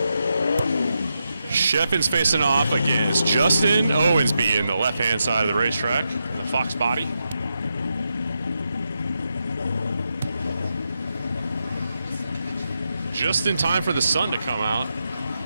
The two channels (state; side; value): inverted; both; correlation -0.86